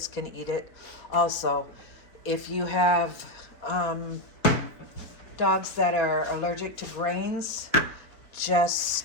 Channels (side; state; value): right; late; 3.9 ms